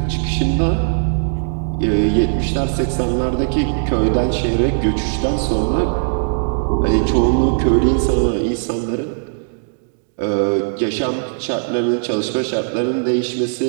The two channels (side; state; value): left; silent; digital silence